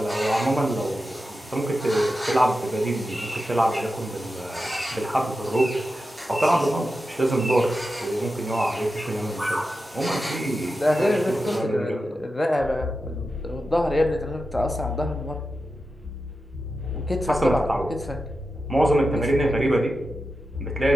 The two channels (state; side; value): normal; both; correlation 0.91